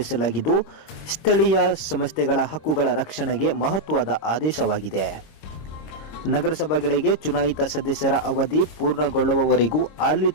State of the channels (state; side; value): late; right; 26 ms